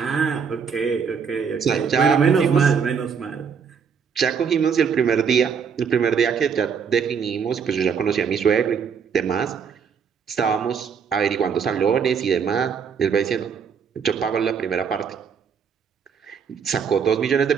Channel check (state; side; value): quieter; left; 6.6 dB